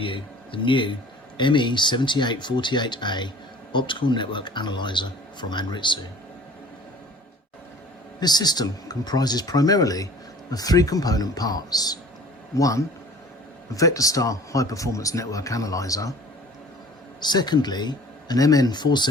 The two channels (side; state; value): both; normal; correlation 0.48